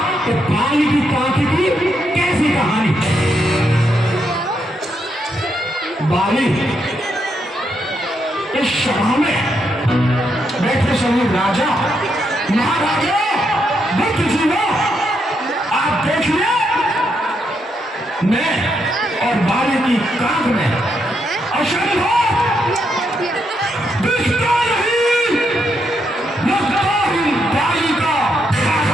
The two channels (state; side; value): normal; both; correlation 0.79